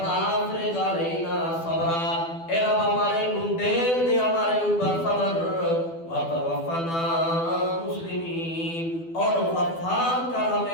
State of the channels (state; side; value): late; right; 12 ms